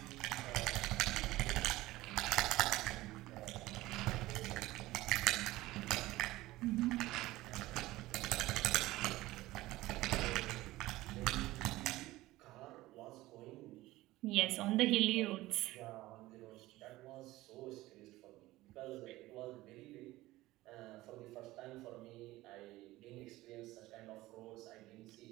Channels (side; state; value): left; quieter; 17.8 dB